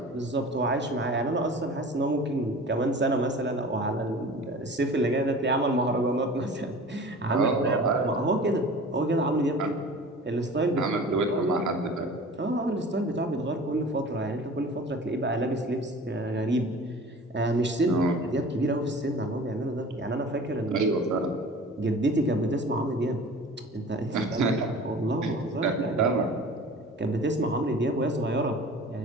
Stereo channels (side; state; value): both; normal; correlation 0.41